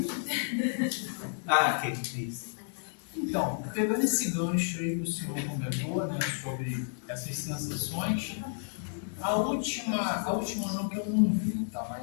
Que isso. Então, pegando esse gancho aí que o senhor comentou, né, sobre essas sensações, a última não que eu não vi, tá?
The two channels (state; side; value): silent; right; digital silence